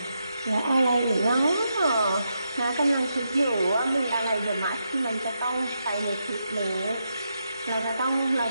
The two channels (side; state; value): both; inverted; correlation -0.83